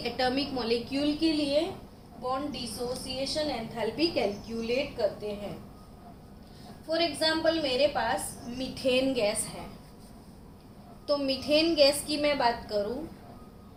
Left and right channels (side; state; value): both; identical; correlation 1.00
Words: एटॉमिक मॉलिक्यूल के लिए बॉन्ड डिसोसिएशन एंथैल्पी कैलकुलेट करते हैं. फॉर एग्जाम्पल मेरे पास मीथेन गैस है. तो मीथेन गैस की मैं बात करूं,